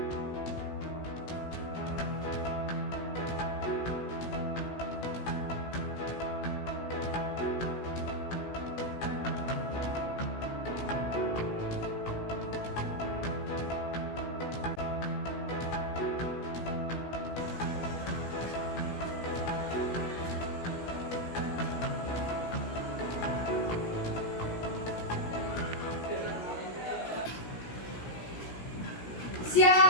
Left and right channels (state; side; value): late; right; 17 ms